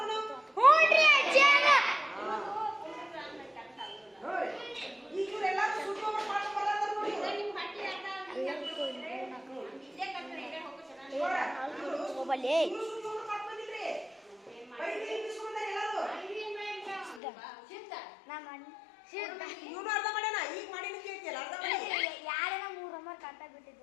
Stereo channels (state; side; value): drops out; right; at 17.2 s